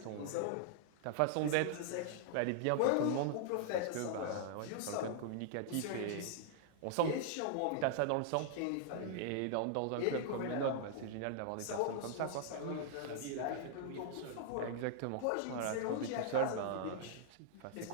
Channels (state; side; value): different; both; correlation -0.01